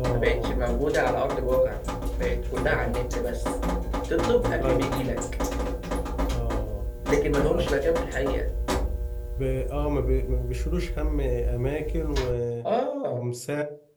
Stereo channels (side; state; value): both; identical; correlation 1.00